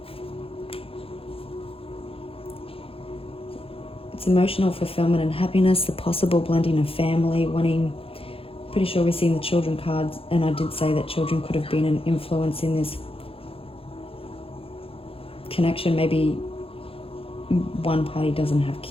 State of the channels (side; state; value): right; late; 0.27 ms